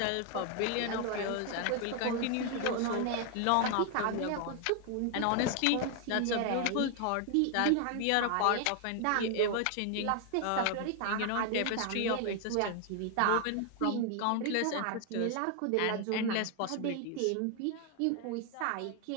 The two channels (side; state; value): both; different; correlation 0.00